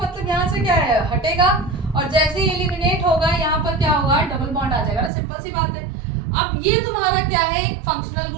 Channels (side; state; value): left; drops out; at 5.1 s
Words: यहाँ से क्या है, हटेगा, और जैसे ही एलिमिनेट होगा यहाँ पर क्या होगा, डबल बॉन्ड आ जाएगा ना, सिंपल सी बात है। अब ये तुम्हारा क्या है, एक फंक्शनल